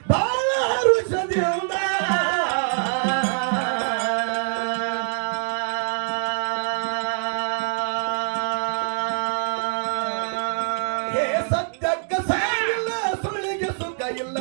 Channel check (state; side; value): silent; left; digital silence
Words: ಬಾಳ ಹರುಷದಿಂದ. ಹೇ ಸತ್ಯಕ್ಕ ಸಾಗಿಲ್ಲ, ಸುಳ್ಳಿಗೆ ಸುಖ ಇಲ್ಲ,